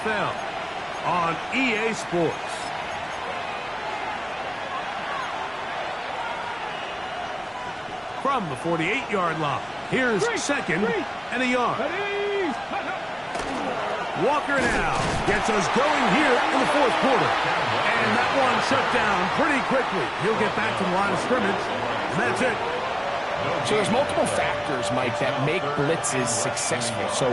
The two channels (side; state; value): both; identical; correlation 1.00